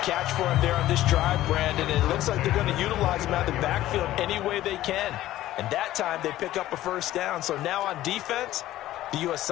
catch for him there on this drive, Brandon. And it looks like they're going to utilize him out of the backfield any way they can. And that time they pick up a first down. So now on defense, do you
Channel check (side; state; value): right; quieter; 14.6 dB